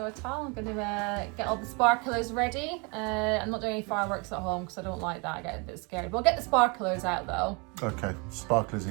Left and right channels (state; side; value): quieter; left; 31.3 dB